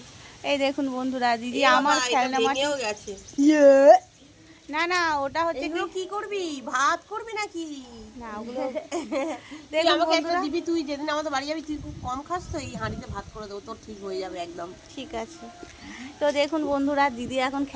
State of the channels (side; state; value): both; identical; correlation 1.00